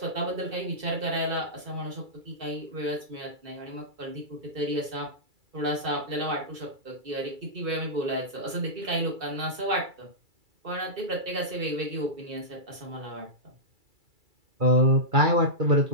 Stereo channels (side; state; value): left; late; 2.3 ms